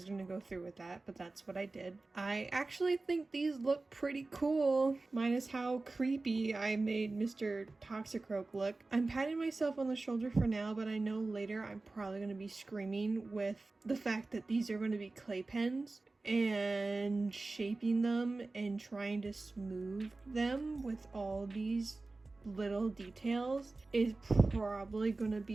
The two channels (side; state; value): left; quieter; 3.4 dB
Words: going to go through with that, but that's what I did. I actually think these look pretty cool, minus how creepy I made Mr. Toxicroak look. I'm patting myself on the shoulder for now, but I know later I'm probably going to be screaming with the fact that these are going to be clay pens and shaping them and trying to smooth them with all these little details is probably gonna